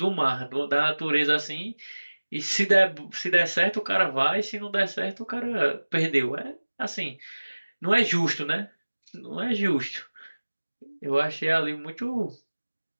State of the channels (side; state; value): both; inverted; correlation -1.00